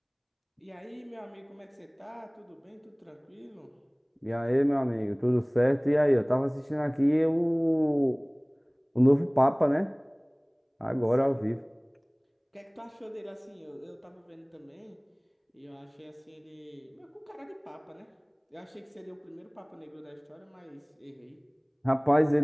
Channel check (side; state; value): both; identical; correlation 1.00